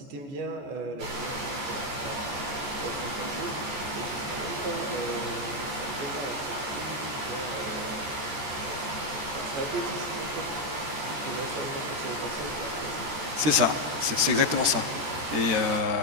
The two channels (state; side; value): late; left; 13 ms